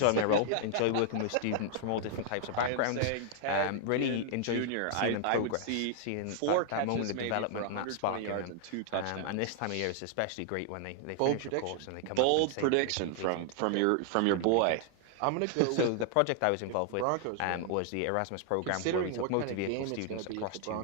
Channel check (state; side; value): different; both; correlation 0.00